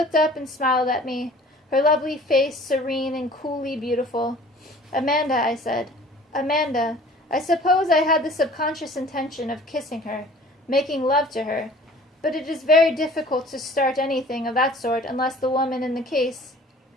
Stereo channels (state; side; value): normal; both; correlation 0.48